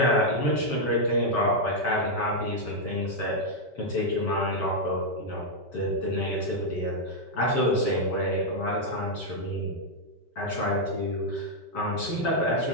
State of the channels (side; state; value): right; late; 5.2 ms